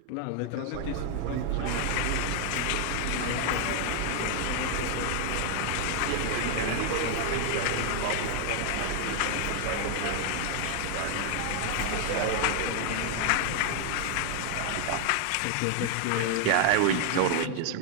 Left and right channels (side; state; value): both; different; correlation 0.00